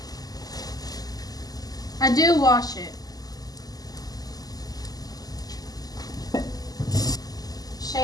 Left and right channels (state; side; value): late; right; 0.18 ms